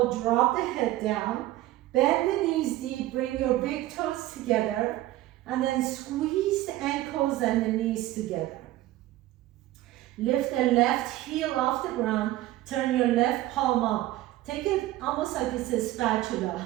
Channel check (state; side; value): quieter; left; 15.7 dB